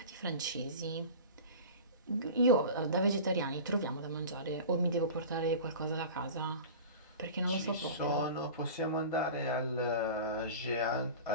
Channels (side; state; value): both; inverted; correlation -0.35